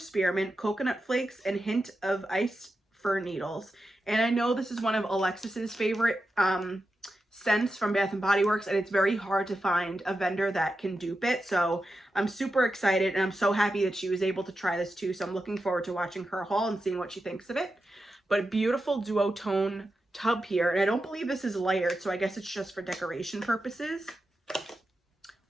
coconut flakes, and hint of iced fir needles. And I know this is one of Alexis's favorite scents from Bath & Body Works, and it's very hard to find a vendor that can dupe it. So I'm super excited, and I'm so happy that she was able to try this too. So I'm looking forward to watching her haul and seeing what she thinks of it. But beautiful duotone tub here, and I don't believe this is layered, so I guess it's just for decoration purposes.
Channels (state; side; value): normal; both; correlation 0.90